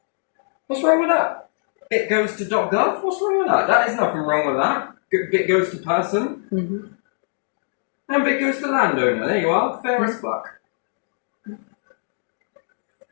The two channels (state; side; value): silent; right; digital silence